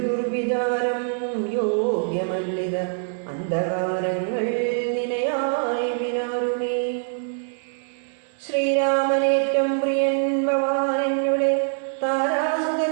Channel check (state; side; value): silent; left; 63 dB below the other